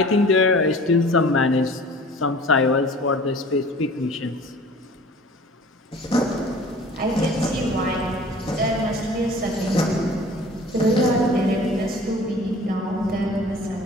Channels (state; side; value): normal; both; correlation 0.46